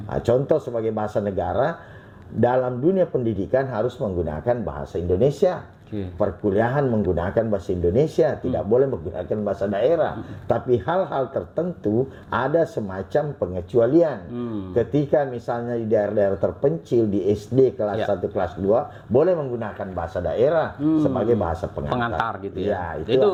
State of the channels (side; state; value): both; identical; correlation 1.00